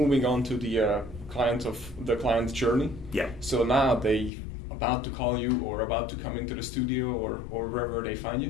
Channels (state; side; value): drops out; right; at 4.3 s